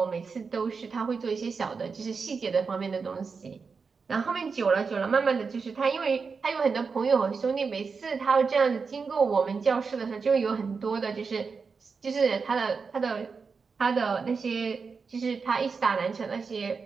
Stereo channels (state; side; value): quieter; left; 5.1 dB